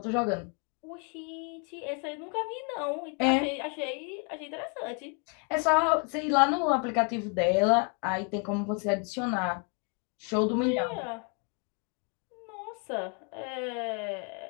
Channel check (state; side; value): quieter; right; 36.6 dB